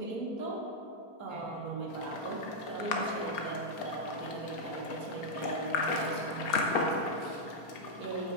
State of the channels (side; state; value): right; late; 4.7 ms